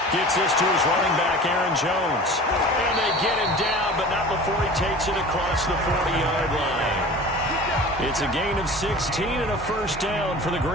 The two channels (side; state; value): both; normal; correlation 0.39